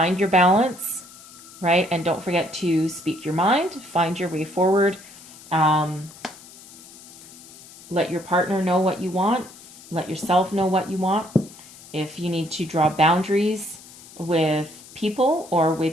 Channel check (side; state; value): left; noise; hiss, 19 dB below the sound